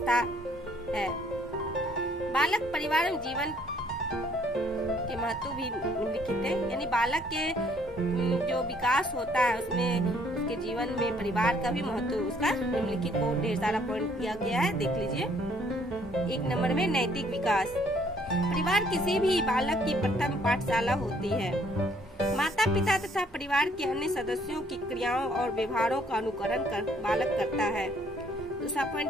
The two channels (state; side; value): normal; both; correlation 0.63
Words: है। बालक परिवार में जीवन के महत्व भी निम्नलिखित है, यानी बालक के जो विकास होता है उसमें उसके जीवन में परिवार का भी महत्व उसका निम्नलिखित बहुत ढेर सारा पॉइंट दिया गया है, देख लीजिए। 1 नंबर में नैतिक विकास। परिवार किसी भी बालक की प्रथम पाठशाला होती है। माता पिता तथा परिवार के अन्य सदस्यों की क्रियाओं और व्यवहारों का अनुकरण कर बालक करता है। दूसरा पॉइंट